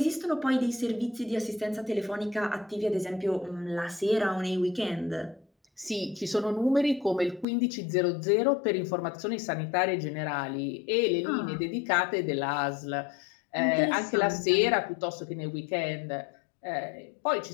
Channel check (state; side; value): drops out; right; at 7.5 s